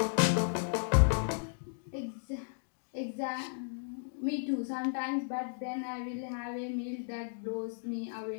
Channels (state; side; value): silent; right; digital silence